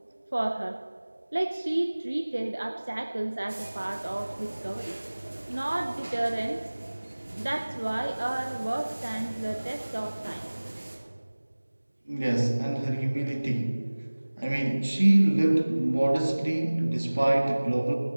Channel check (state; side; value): inverted; both; correlation -1.00